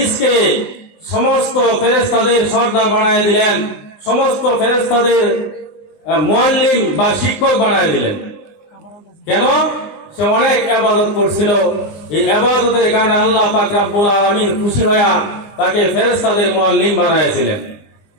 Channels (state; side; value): late; right; 20 ms